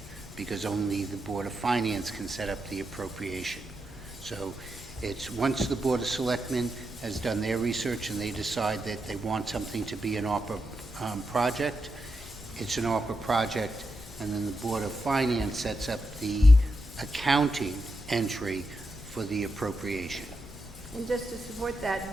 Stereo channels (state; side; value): normal; both; correlation 0.85